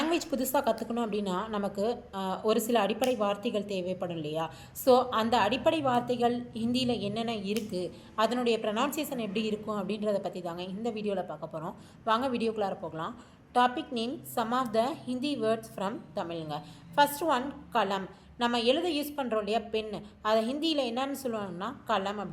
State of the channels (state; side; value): identical; both; correlation 1.00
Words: புதுசாக கற்றுக்கணும் அப்படின்னா நமக்கு ஒரு சில அடிப்படை வார்த்தைகள் தேவைப்படும் இல்லையா? ஸோ அந்த அடிப்படை வார்த்தைகள் ஹிந்தியில் என்னென்ன இருக்குது, அதனுடைய ப்ரொனவுன்சியேஷன் எப்படி இருக்கும் அப்படின்றத பற்றி தாங்க இந்த வீடியோவில் பார்க்க போகிறோம். வாங்க வீடியோக்குள்ளார போகலாம். Topic name some of the Hindi words from தமிழுங்க. First one column. நம்ம எழுத யூஸ் பண்ணுறோம் இல்லையா பென், அதை ஹிந்தியில் என்னன்னு சொல்லுவாங்கன்னா கலம்